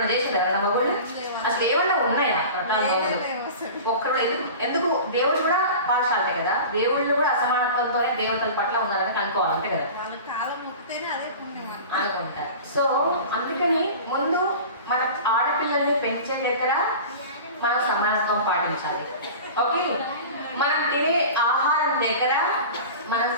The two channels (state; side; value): inverted; both; correlation -0.36